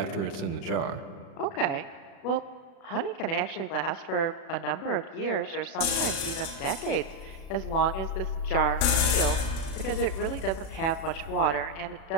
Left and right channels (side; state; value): right; late; 36 ms